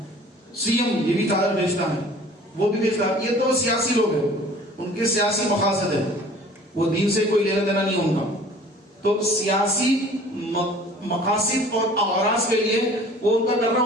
سی ایم یہ بھی چادر بیچتا ہے، وہ بھی بیچتا ہے. یہ تو سیاسی لوگ ہیں، ان کے سیاسی مقاصد ہیں، وہ دین سے کوئی لینا دینا نہیں ان کا. تو سیاسی مقاصد اور اغراض کے لیے وہ ان کا کرنا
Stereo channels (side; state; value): both; normal; correlation 0.48